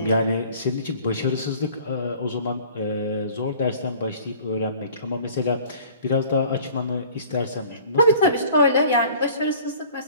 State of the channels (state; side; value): inverted; both; correlation -0.49